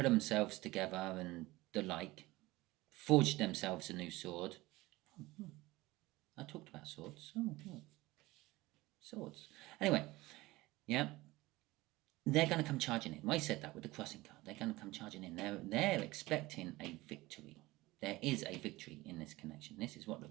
together and the like, forged themselves a new sword. I talked about swords. Oh, yeah. Swords. Anyway, yeah. They're going to come charging in. I said that with the crossing card. They're going to come charging in. They're expecting a victory. There is a victory in this connection. This is what the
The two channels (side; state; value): left; quieter; 19.7 dB